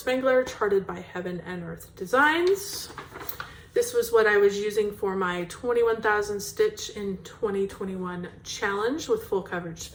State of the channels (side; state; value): both; identical; correlation 1.00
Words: charted by Heaven and Earth Designs. This was what I was using for my 21,000 stitch in 2021 challenge with full coverage